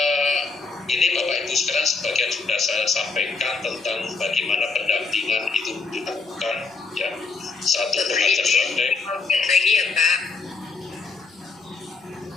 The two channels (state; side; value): quieter; right; 4.4 dB